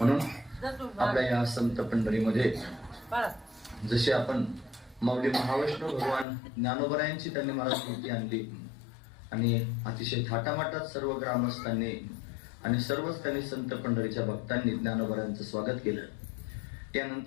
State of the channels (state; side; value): drops out; right; at 6.2 s